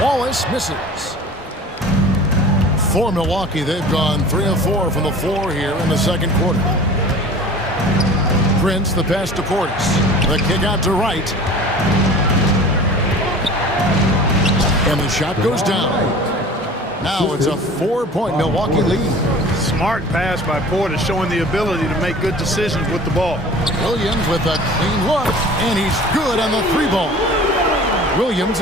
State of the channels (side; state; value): both; normal; correlation 0.42